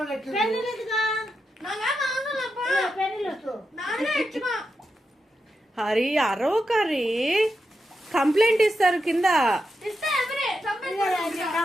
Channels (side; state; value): both; normal; correlation 0.87